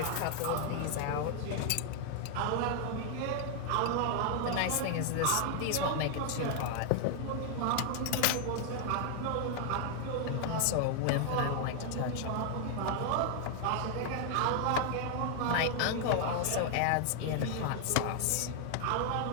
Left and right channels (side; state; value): both; different; correlation 0.00